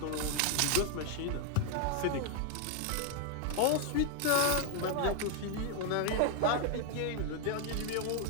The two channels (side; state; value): both; different; correlation 0.01